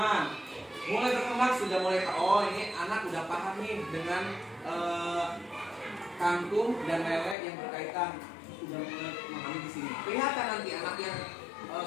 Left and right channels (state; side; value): drops out; right; at 7.4 s